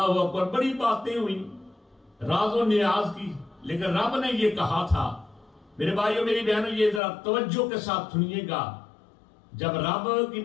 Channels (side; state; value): right; drops out; at 7.0 s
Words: اکبر. بڑی باتیں ہوئی راز و نیاز کی، لیکن رب نے یہ کہا تھا. میرے بھائیوں میری بہنوں یہ ذرا توجہ کے ساتھ سنیے گا. جب رب کی